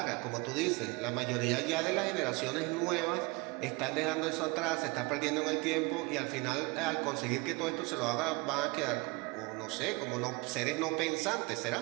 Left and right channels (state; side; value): quieter; left; 26.3 dB